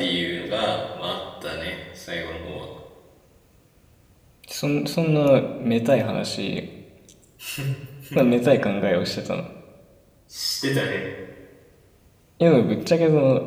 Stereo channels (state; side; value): identical; both; correlation 1.00